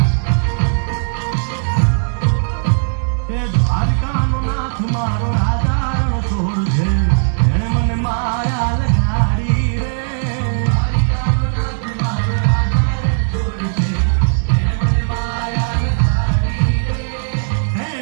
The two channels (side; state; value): left; silent; digital silence